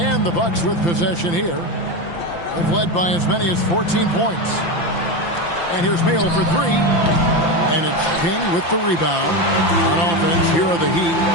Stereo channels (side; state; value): right; late; 5.9 ms